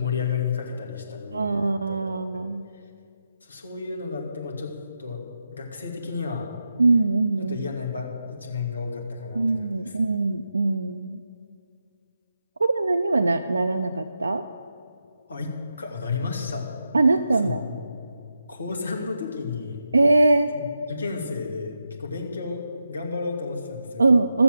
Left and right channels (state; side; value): inverted; both; correlation -0.87